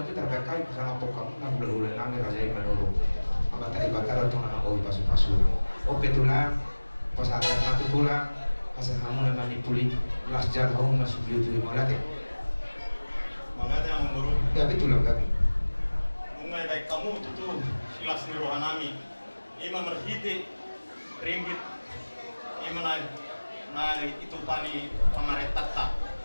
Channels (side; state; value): both; inverted; correlation -1.00